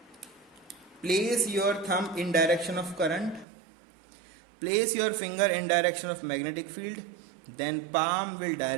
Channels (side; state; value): left; drops out; at 3.5 s